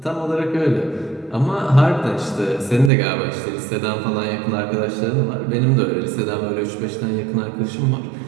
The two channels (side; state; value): left; drops out; at 2.9 s